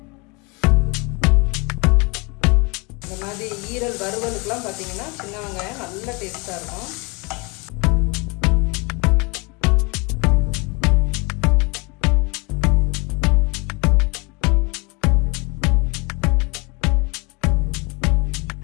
இந்த மாதிரி ஈரல் வறுவலுக்கெலாம் பார்த்தீங்கன்னா சின்ன வெங்காயம் நல்ல டேஸ்ட்டாக இருக்கும்.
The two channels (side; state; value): right; quieter; 29.0 dB